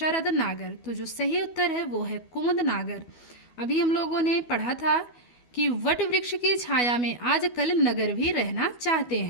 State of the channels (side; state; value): right; late; 12 ms